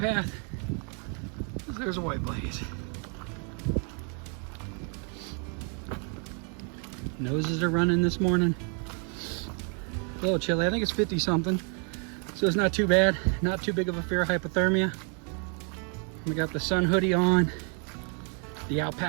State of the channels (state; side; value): quieter; left; 39.1 dB